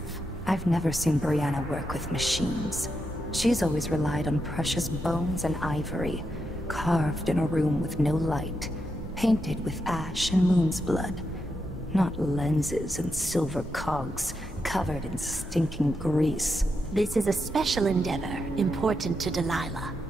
I've never seen Brianna work with machines. She's always relied on precious bones and ivory, carved in a room with no light, painted with ash and moon's blood. Not lenses and silver cogs, covered in stinking grease. This is a special endeavor, important to Delilah.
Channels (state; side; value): normal; both; correlation 0.84